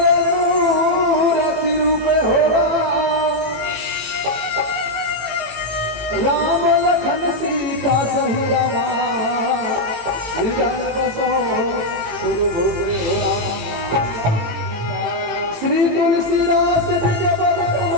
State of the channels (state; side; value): late; left; 18 ms